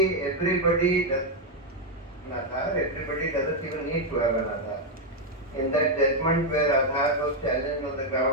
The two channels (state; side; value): normal; both; correlation 0.02